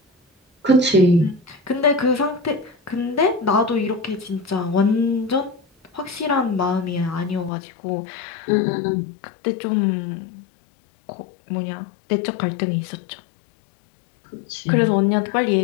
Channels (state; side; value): drops out; right; at 7.5 s